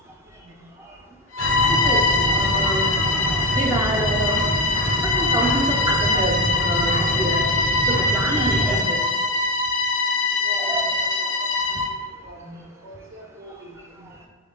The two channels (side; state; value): both; normal; correlation 0.13